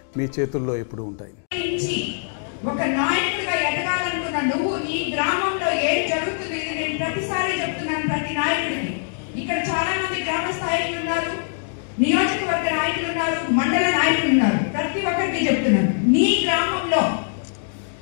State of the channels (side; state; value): right; silent; digital silence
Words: మీ చేతుల్లో ఎప్పుడూ ఉంటాయి. ఒక నాయకుడిగా ఎదగాలనుకున్న నువ్వు ఈ గ్రామంలో ఏం జరుగుతుంది నేను ప్రతిసారి చెప్తున్నాను. ప్రతి నాయకుడికి ఇక్కడ చాలా మంది గ్రామ స్థాయిలు ఉన్నారు, నియోజకవర్గ నాయకులు ఉన్నారు, మండల నాయకులు ఉన్నారు. ప్రతి ఒక్కరికి చెప్తున్నాను, నీ గ్రామంలో